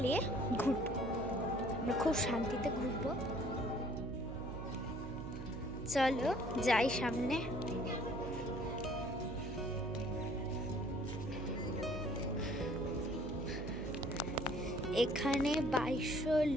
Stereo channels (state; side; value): noise; right; hum, 9 dB below the sound